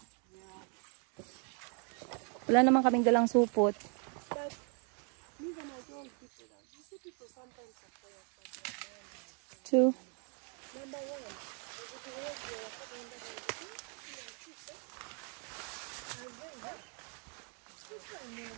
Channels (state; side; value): quieter; left; 39.2 dB